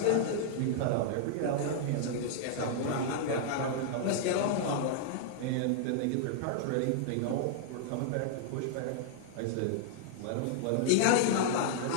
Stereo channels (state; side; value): different; both; correlation -0.01